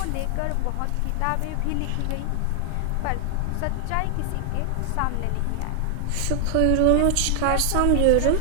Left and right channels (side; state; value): both; different; correlation 0.00